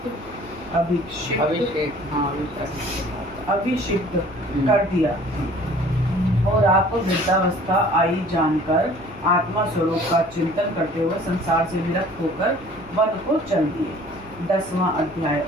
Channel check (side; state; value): both; normal; correlation 0.51